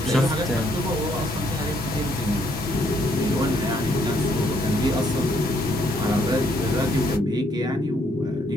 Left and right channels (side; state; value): both; normal; correlation 0.70